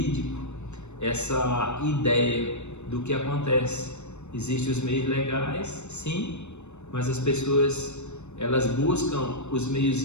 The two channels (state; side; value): late; right; 0.82 ms